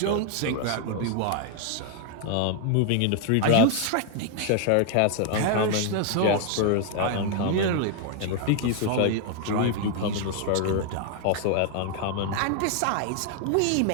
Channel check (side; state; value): both; different; correlation 0.00